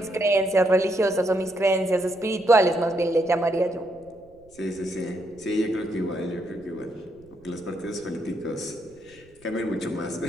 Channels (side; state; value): right; noise; rumble, 28 dB below the sound